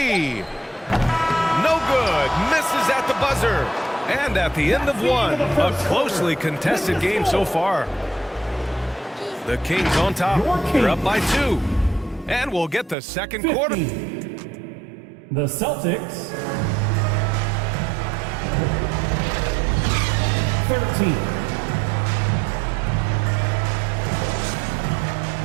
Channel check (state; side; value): drops out; left; at 13.0 s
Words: No good. Misses at the buzzer. And at the end of one, a closely contested game so far. The Kings on top. They're up by 2. And we'll get the second quarter. The Celtics. 13.